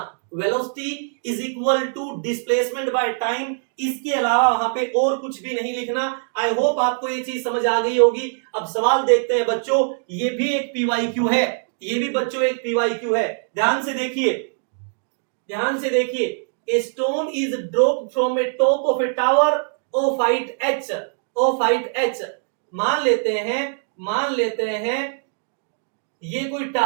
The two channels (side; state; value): left; silent; digital silence